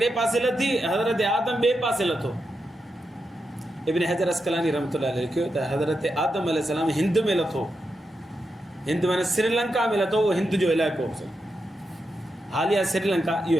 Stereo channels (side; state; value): both; normal; correlation 0.86